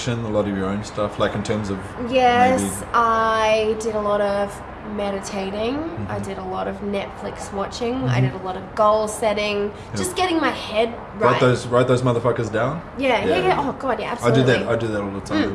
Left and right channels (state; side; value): identical; both; correlation 1.00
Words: a lot of your own stuff, like in terms of? Yes, I did a lot of meditating. I did a lot of Netflix watching. I did a lot of goal setting. Just getting my head right. Write those motherfuckers down. Yeah. Oh god, yeah, absolutely. I do that all the